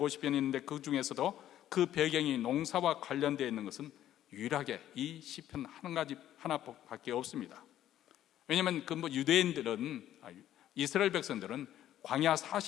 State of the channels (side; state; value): right; quieter; 12.0 dB